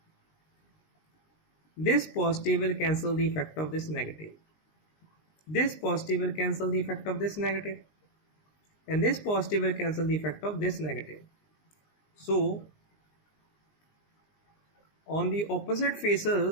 This positive will cancel the effect of this negative. This positive will cancel the effect of this negative. And this positive will cancel the effect of this negative. So on the opposite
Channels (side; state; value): right; late; 19 ms